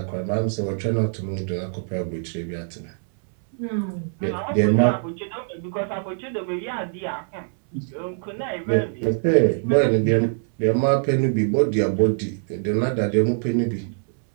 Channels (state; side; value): silent; left; 63 dB below the other